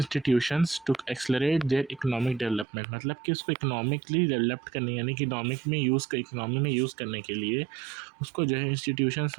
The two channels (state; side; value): drops out; left; at 2.7 s